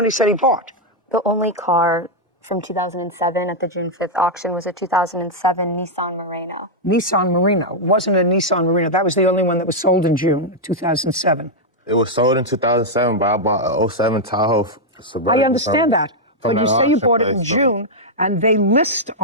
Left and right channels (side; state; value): both; normal; correlation -0.03